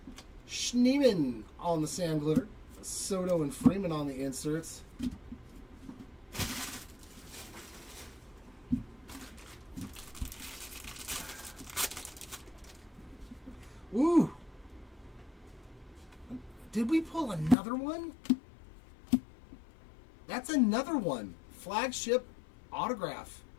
Schneeman on the Sand Glitter, Soto and Freeman on the inserts. Ooh! Did we pull another one? That's another one. Flagship autograph.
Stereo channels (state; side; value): drops out; right; at 17.6 s